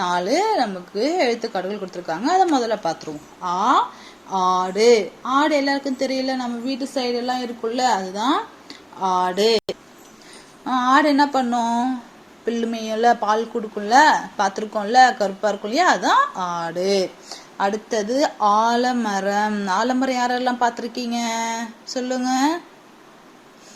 நமக்கு எழுத்துக்காடுகள் கொடுத்துருக்காங்க. அதை முதல்ல பார்த்துருவோம். ஆடு. ஆடு எல்லாருக்கும் தெரியல, நம்ம வீட்டு சைடெல்லாம் இருக்குல்ல, அதுதான் ஆடு. ஆடு என்ன பண்ணும்? பில்லு மேயும்ல, பால் கொடுக்கும்ல, பார்த்துருக்கோம்ல, கருப்பா இருக்கும் இல்லையா, அதுதான் ஆடு. அடுத்தது ஆலமரம். ஆலமரம் யாரெல்லாம் பார்த்துருக்கீங்க சொல்லுங்க.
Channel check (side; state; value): both; identical; correlation 1.00